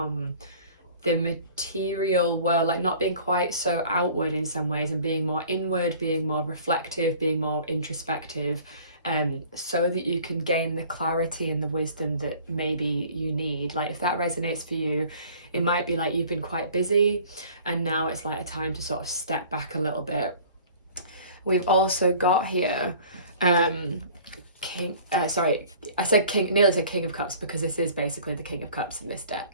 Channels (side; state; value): both; inverted; correlation -0.48